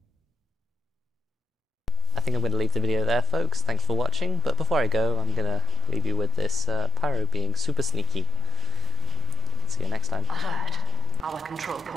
I think I'm going to leave the video there, folks. Thanks for watching, but before I go, I'm going to leave you with this Pyro being super sneaky. See you next time. Alert. Our control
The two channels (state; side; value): normal; both; correlation 0.78